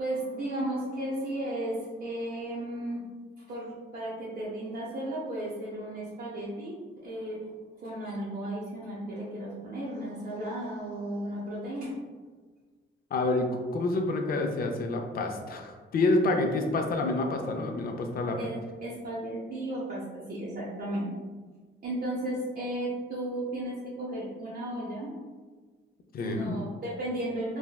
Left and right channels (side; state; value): both; normal; correlation 0.47